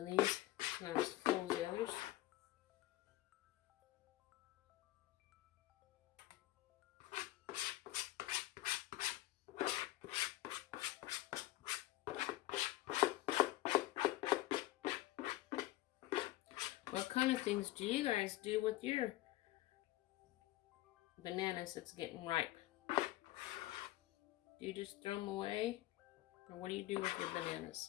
these. Not as full as the others. What kind of things do you guys do with your bananas that's getting ripe. Do you just throw them away? Or what do you do with your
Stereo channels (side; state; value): right; quieter; 16.7 dB